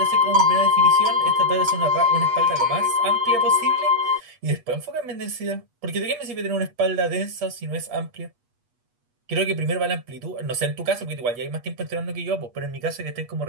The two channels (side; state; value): left; late; 8.3 ms